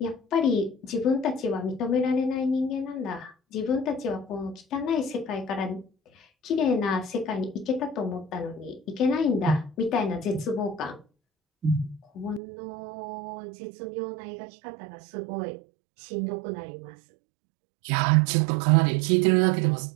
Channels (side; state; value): left; drops out; at 12.4 s